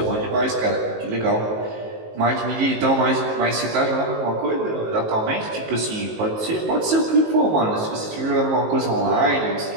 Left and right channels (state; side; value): late; left; 19 ms